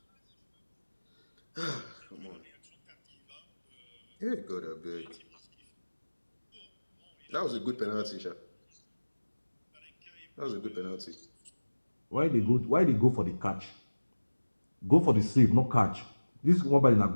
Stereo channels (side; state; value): both; inverted; correlation -1.00